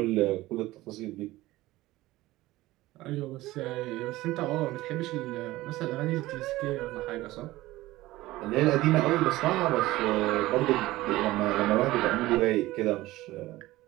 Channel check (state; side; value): quieter; left; 17.8 dB